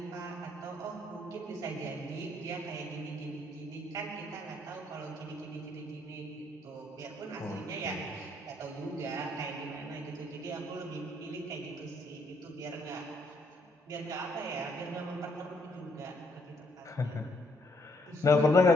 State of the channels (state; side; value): normal; both; correlation 0.70